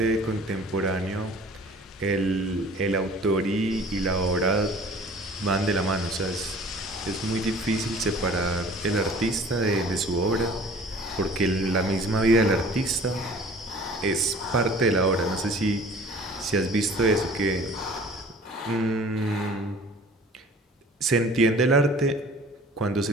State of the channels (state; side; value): normal; both; correlation 0.48